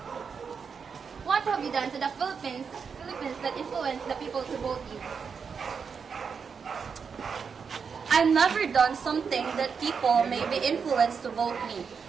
what have you done to the Philippines that influence the people to vote you? I've never done something that people may be influenced to vote me.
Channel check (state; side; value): quieter; left; 6.0 dB